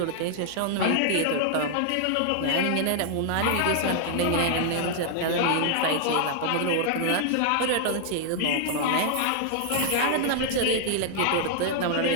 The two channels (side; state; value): both; different; correlation -0.01